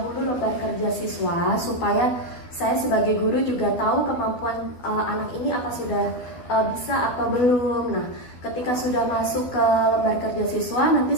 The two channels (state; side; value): late; right; 12 ms